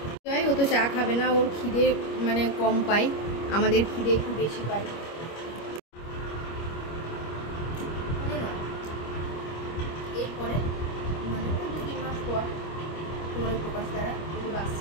সুজয় ও তো চা খাবে না, ওর খিদে মানে কম পাই, আমাদের খিদে একটু বেশি পাই। এরপরে মানে 2-3 মাস পর তোমার প্রকাশ দ্বারা যদি বাস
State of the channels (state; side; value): late; right; 25 ms